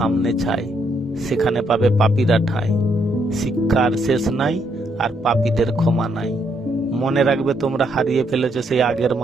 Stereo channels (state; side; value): normal; both; correlation 0.74